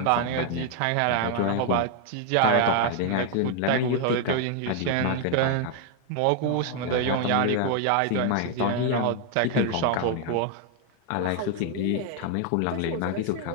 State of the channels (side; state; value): both; different; correlation 0.00